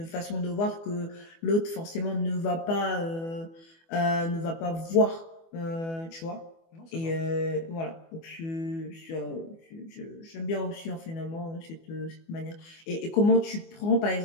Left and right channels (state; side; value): late; right; 24 ms